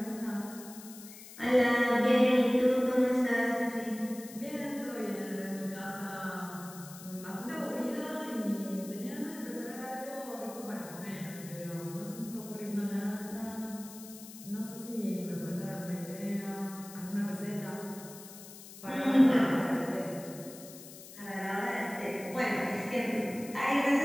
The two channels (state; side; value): noise; left; hiss, 16 dB below the sound